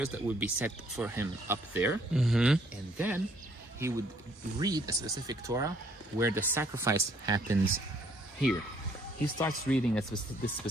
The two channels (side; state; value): both; normal; correlation 0.65